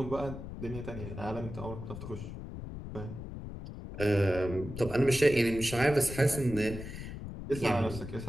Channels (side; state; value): left; noise; rumble, 9 dB below the sound